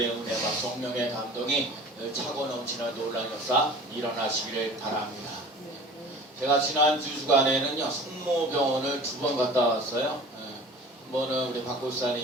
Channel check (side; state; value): both; normal; correlation 0.42